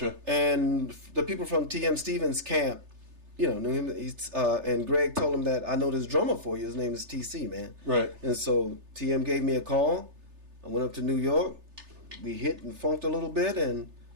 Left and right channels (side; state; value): left; late; 3.3 ms